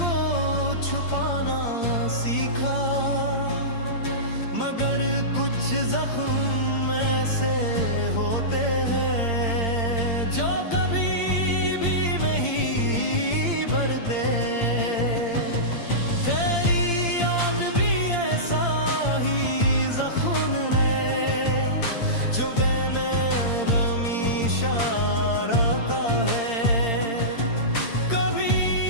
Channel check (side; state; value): right; late; 8.7 ms